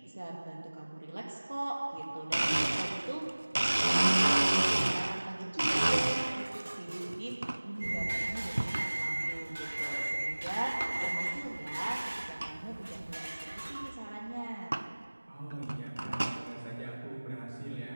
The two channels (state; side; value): inverted; both; correlation -1.00